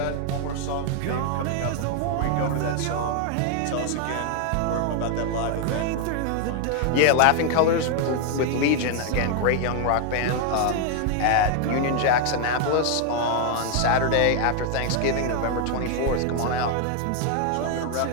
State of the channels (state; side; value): different; both; correlation 0.00